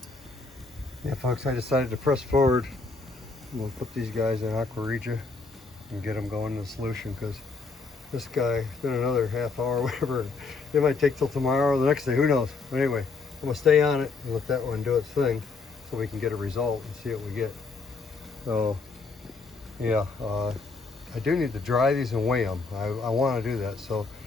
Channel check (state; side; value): quieter; right; 4.2 dB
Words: Yeah, folks, I decided to press forward. We'll put these guys in Aqua Regia and get them going in the solution, because this guy, it's been another half hour, whatever. It might take till tomorrow or the next day, who knows. But anyway, I'm gonna stay on it and let that one do its thing so we can get a result and see what we get. So yeah, I do need to dry these and weigh them. I want to do that. So